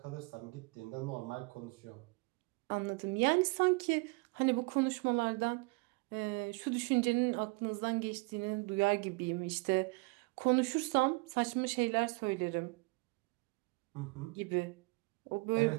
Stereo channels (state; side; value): quieter; left; 28.8 dB